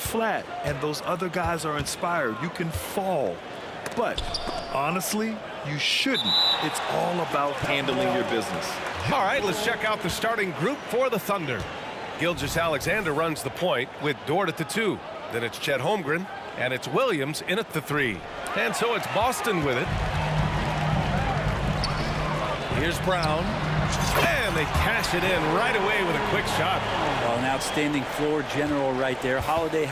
and those other guys are inspired, you can fall. But honestly, you shouldn't. It's all about handling your business. All right, let's check out the starting group for the Thunder. Gilgeous-Alexander runs the point with Dort at the 2. Then it's Chet Holmgren, and it's Williams in at the 3. And so it's Boston with it. Here's Brown, and they cash it in right away with a quick shot. Well, an outstanding floor general right there. Holiday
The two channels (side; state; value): both; identical; correlation 1.00